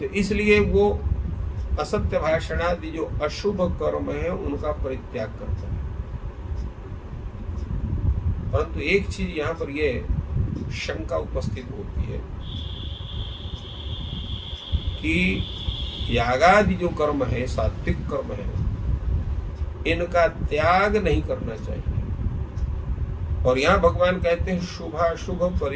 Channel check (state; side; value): identical; both; correlation 1.00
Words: इसलिए वो असत्य भाषण आदि जो अशुभ कर्म है उनका परित्याग करता है। परंतु एक चीज यहाँ पर यह शंका उपस्थित होती है कि यागादि जो कर्म है, सात्विक कर्म है, इनका त्याग नहीं करना चाहिए। और यहाँ भगवान कहते हैं शुभाशुभ